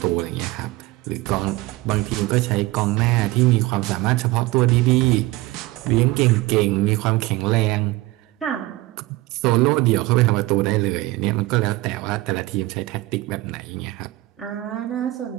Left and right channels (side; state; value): left; quieter; 19.2 dB